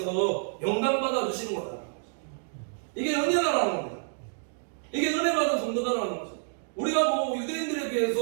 영광받아 주시는 거다. 이게 은혜다라는 겁니다. 이게 은혜 받은 성도다라는 거죠. 우리가 뭐 유대인들에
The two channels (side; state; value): left; silent; digital silence